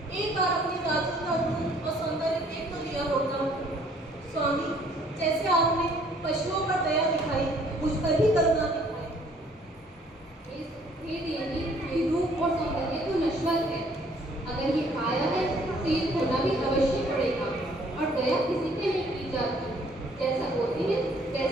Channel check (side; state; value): both; normal; correlation 0.60